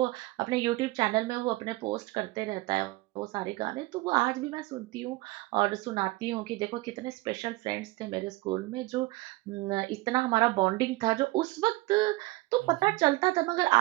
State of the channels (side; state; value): left; quieter; 20.7 dB